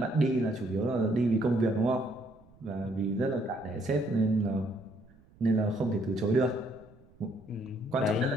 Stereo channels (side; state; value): right; noise; rumble, 27 dB below the sound